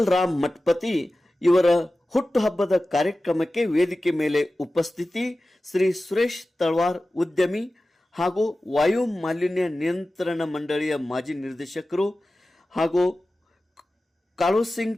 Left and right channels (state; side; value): normal; both; correlation 0.95